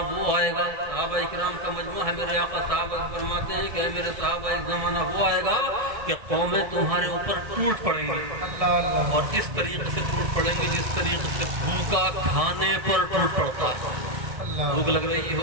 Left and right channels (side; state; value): left; late; 1.6 ms